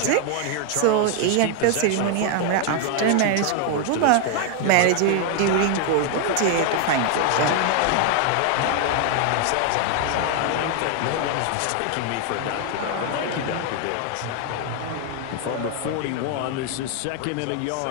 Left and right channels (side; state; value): both; different; correlation 0.00